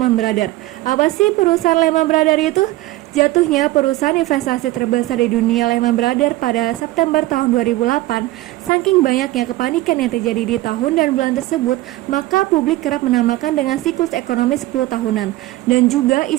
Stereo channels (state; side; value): quieter; left; 17.5 dB